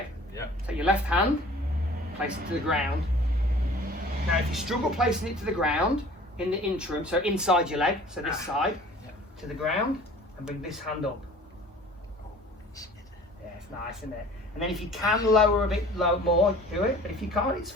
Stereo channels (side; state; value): both; normal; correlation 0.47